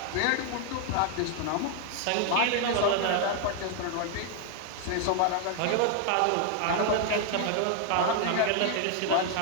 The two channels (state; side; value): different; both; correlation 0.00